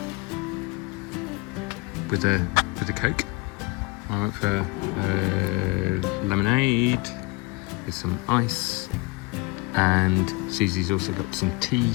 with a Coke. I went for lemonade with some ice, and Susie's also got some tea.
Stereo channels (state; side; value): quieter; right; 25.9 dB